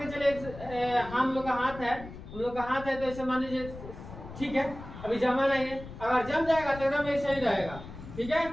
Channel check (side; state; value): left; noise; rumble, 13 dB below the sound